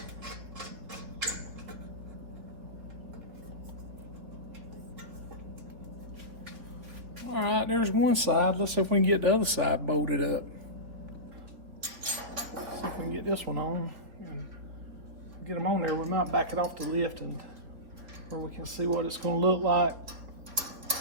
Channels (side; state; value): left; late; 3.3 ms